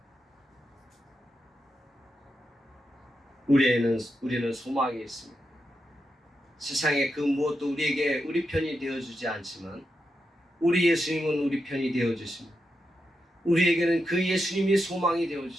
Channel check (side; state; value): both; normal; correlation 0.86